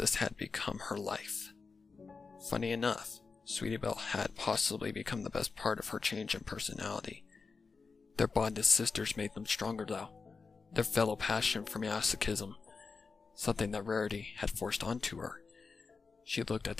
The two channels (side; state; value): right; quieter; 4.7 dB